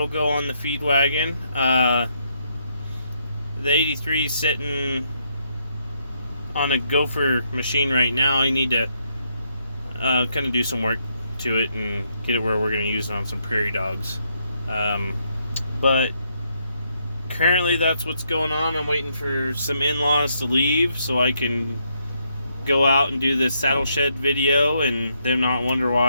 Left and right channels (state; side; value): inverted; both; correlation -0.76